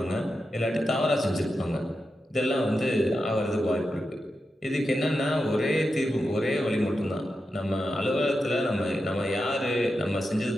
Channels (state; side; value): normal; both; correlation 0.89